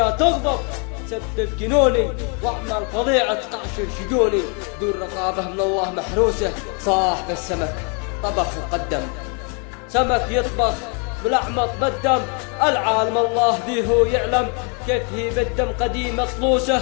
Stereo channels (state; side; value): quieter; right; 37.1 dB